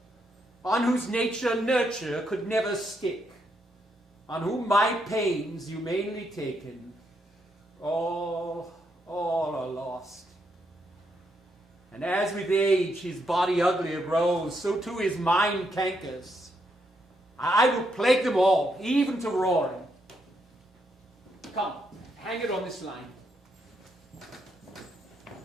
on whose nature nurture could never stick, on whom my pains humanely taken, all are lost. And as with age his body uglier grows, so too his mind cankers. I will plague them all, even to roaring. Come, hang it on this line.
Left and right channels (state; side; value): normal; both; correlation 0.78